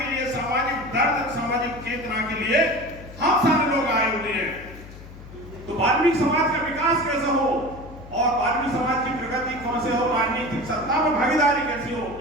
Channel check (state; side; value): noise; left; hum, 16 dB below the sound